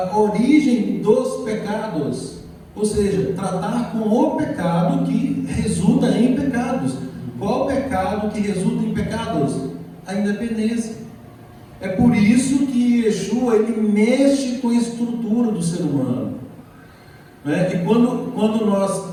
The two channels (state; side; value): identical; both; correlation 1.00